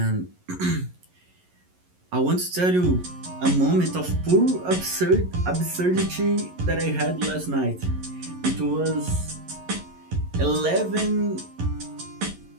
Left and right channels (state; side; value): late; left; 11 ms